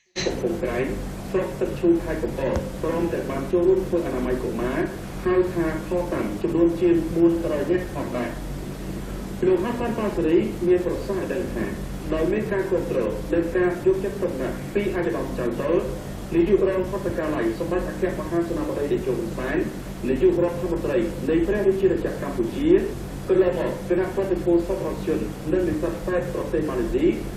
កំពង់ក្រែងស្រុកទឹកឈូខេត្តកំពតព្រមទាំងបានចូលរួមធ្វើអនាម័យកុមារហៅថាខតាមចំនួនជាង400នាក់ផងដែរលោកហាសានប៉ាសេរីមានប្រសាសន៍ឲ្យដឹងថាដោយមានការគ្រប់គ្រងនិងការយកចិត្តទុកដាក់ពីអាជ្ញាធរចៅតលនាយករងហត្ថកាល័យសម្បត្តិអគ្គមហាសេនាបតីតេជោហ៊ុនសែននាយករដ្ឋមន្ត្រីនៃព្រះរាជាណាចក្រកម្ពុជាកន្លងមកគណៈប្រតិភូសប្បុរសជននិងនិស្សិតពេទ្យប្រទេសម៉ាឡេស៊ី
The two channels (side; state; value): both; identical; correlation 1.00